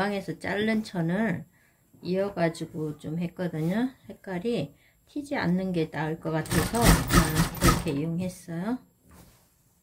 자른 천을 이어가지고 좀 했거든요. 색깔이 튀지 않는 게 나을 것 같아서 그렇게 이용했어요.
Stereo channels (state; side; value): identical; both; correlation 1.00